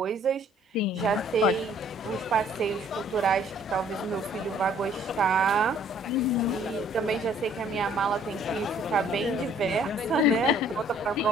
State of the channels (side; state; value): both; normal; correlation 0.59